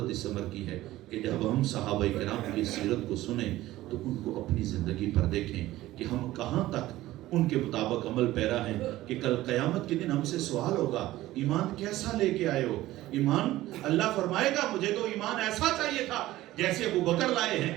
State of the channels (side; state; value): left; quieter; 16.1 dB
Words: اس عمر کی ہے کہ جب ہم صحابہ کرام کی سیرت کو سنیں تو ان کو اپنی زندگی پر دیکھیں کہ ہم کہاں تک ان کے مطابق عمل پیرا ہیں، کہ کل قیامت کے دن ہم سے سوال ہوگا ایمان کیسا لے کے آئے ہو. ایمان اللہ فرمائے گا مجھے تو ایمان ایسا چاہیے تھا جیسے ابو بکر لائے ہیں،